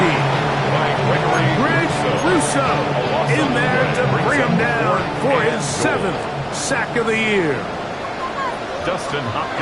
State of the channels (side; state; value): both; identical; correlation 1.00